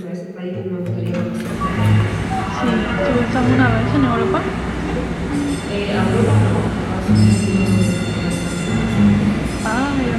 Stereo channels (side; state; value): both; identical; correlation 1.00